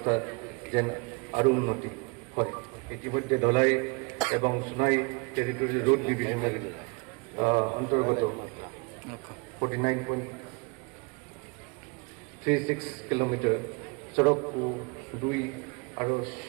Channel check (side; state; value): left; quieter; 30.6 dB